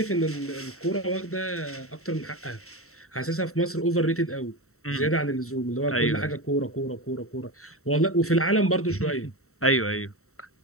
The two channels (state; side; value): late; right; 0.63 ms